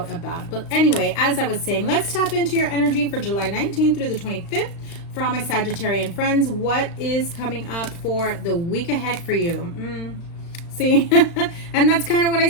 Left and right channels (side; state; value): right; late; 35 ms